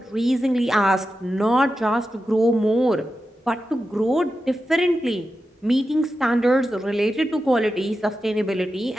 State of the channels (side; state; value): both; normal; correlation 0.91